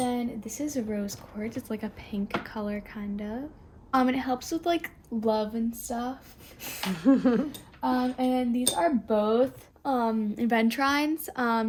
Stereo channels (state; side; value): identical; both; correlation 1.00